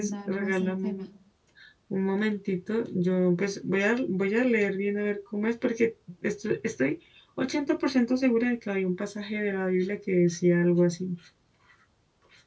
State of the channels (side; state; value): both; identical; correlation 1.00